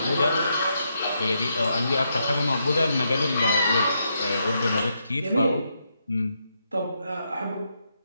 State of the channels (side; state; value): both; inverted; correlation -0.80